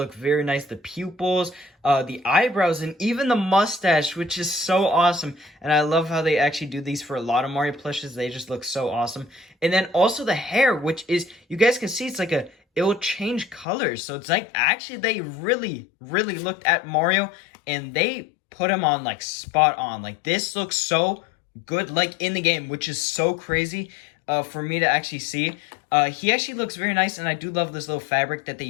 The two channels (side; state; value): right; drops out; at 13.7 s